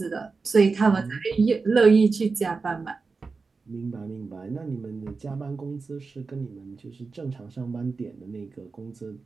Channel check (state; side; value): quieter; left; 4.4 dB